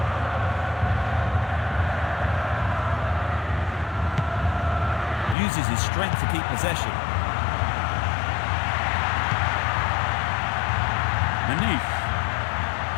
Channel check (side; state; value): right; drops out; at 5.4 s